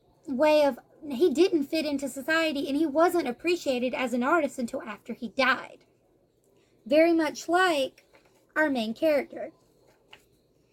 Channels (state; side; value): identical; both; correlation 1.00